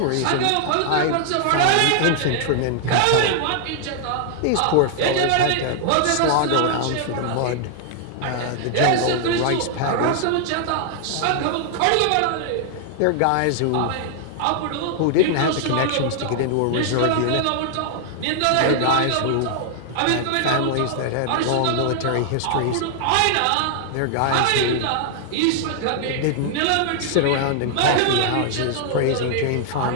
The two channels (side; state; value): both; different; correlation 0.00